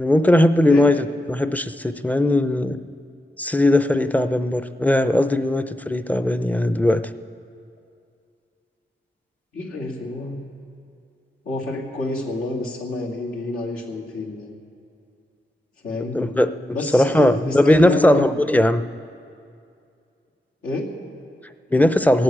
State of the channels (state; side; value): normal; both; correlation 0.87